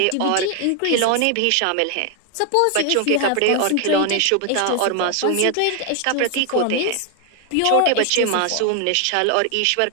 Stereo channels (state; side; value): different; both; correlation 0.01